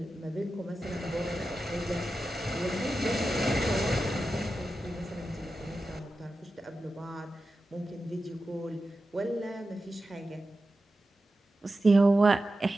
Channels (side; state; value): both; normal; correlation 0.92